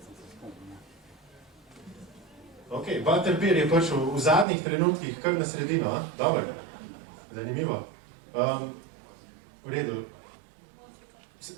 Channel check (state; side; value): drops out; left; at 4.5 s